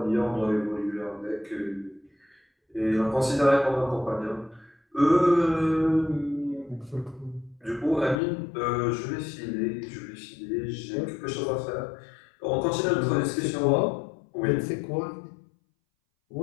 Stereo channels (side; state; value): right; drops out; at 8.2 s